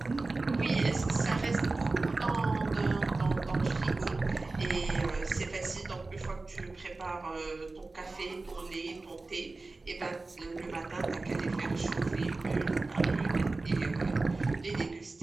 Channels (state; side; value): quieter; left; 3.5 dB